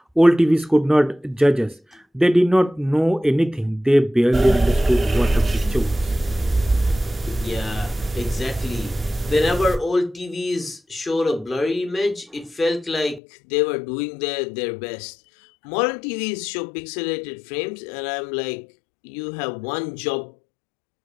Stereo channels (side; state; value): right; drops out; at 13.2 s